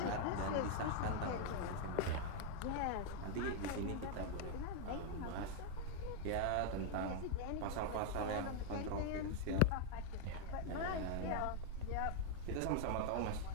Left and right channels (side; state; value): both; different; correlation 0.00